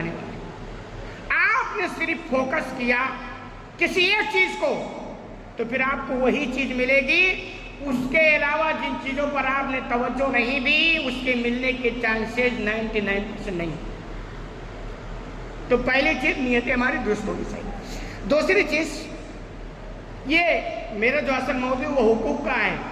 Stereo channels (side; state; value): both; identical; correlation 1.00